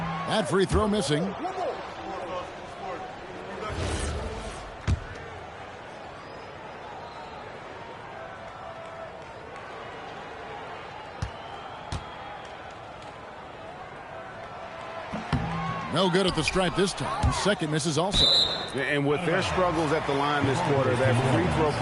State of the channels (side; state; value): both; identical; correlation 1.00